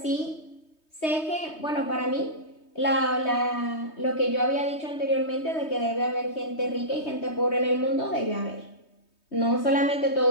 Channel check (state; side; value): late; right; 3.2 ms